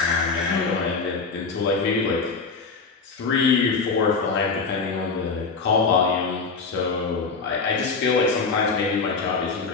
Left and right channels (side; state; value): right; quieter; 4.6 dB